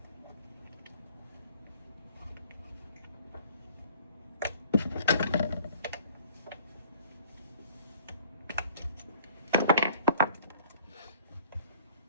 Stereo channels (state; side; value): inverted; both; correlation -0.55